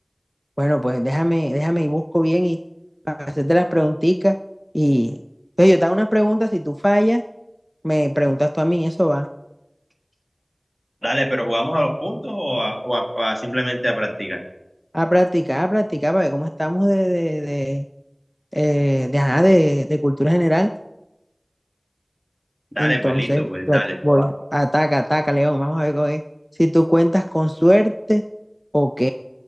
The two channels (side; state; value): both; identical; correlation 1.00